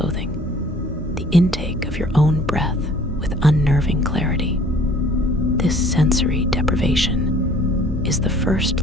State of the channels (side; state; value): both; normal; correlation 0.54